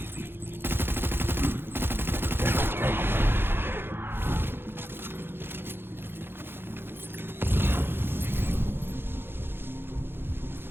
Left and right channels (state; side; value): late; left; 0.10 ms